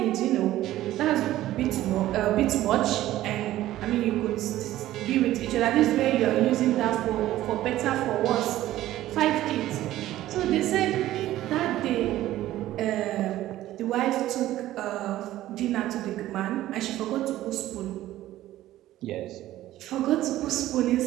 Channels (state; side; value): quieter; left; 14.5 dB